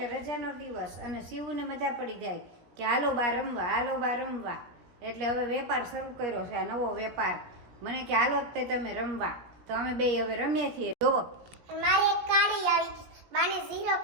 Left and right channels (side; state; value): left; late; 17 ms